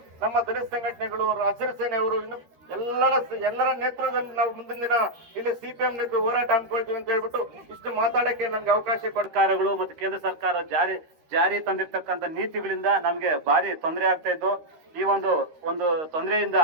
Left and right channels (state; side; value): late; left; 13 ms